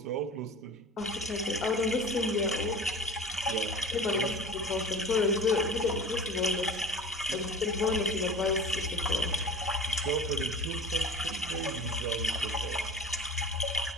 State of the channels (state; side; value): normal; both; correlation 0.36